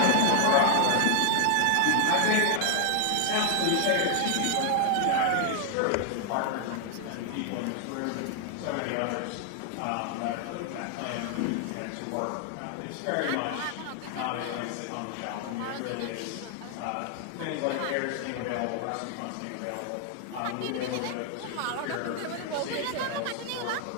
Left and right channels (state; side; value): different; both; correlation 0.00